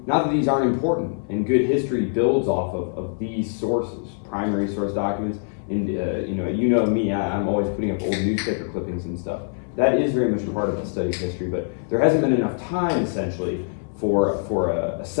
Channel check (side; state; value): right; silent; 58 dB below the other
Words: Not that these aren't important, and good history builds off of these sources, primary source documents. And you know me, I'm always putting up old newspaper clippings and stuff. That is very much a part of the study of history, but there hasn't been enough time, essentially, for a